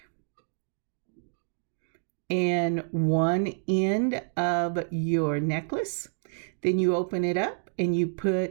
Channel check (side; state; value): left; silent; digital silence